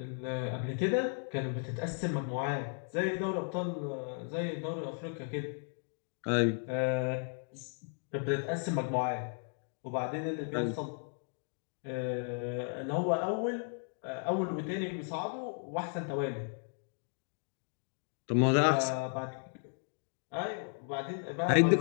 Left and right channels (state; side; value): silent; right; 54 dB below the other